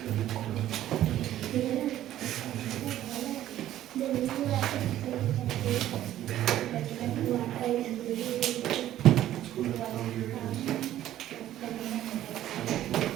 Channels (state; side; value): quieter; left; 12.8 dB